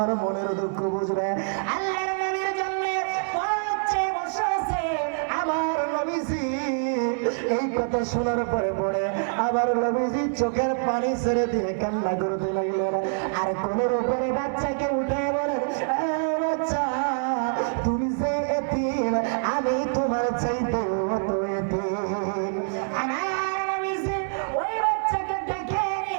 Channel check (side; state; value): left; silent; digital silence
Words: মনের দুঃখ বুঝবে। আল্লাহর নবীর জন্য পথে বসে আছে আমার নবীজি। এই কথা শোনার পরে পরে আবার নবীজি চোখের পানি ছেড়ে দিয়ে কান্না করতে লাগলেন। আর কোলের উপরে বাচ্চাকে উঠে বলেন, বাচ্চা, তুমি যে এতিম, আমি তোমার চাইতে তো এতিম। আমার নবীজি ওই বাচ্চাকে ডেকে